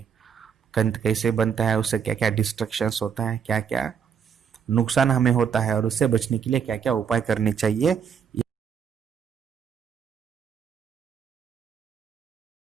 कैसे बनता है, उससे क्या क्या डिस्ट्रक्शंस होता है, क्या क्या नुकसान हमें होता है, और उससे बचने के लिए क्या क्या उपाय करने चाहिए,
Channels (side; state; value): left; quieter; 7.3 dB